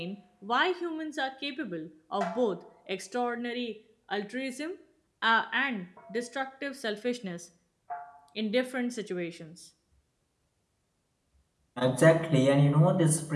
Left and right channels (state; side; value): identical; both; correlation 1.00